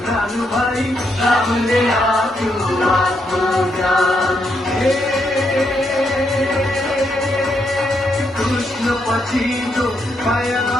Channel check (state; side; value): normal; both; correlation 0.79